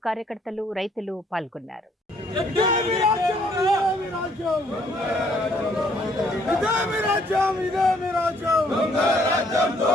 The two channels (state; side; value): normal; both; correlation 0.65